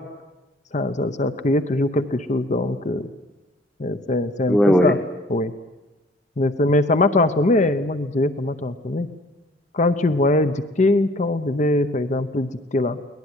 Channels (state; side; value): normal; both; correlation 0.54